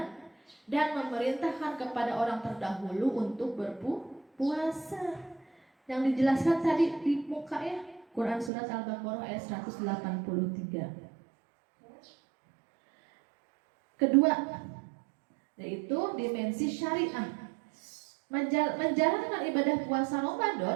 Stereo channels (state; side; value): drops out; left; at 8.5 s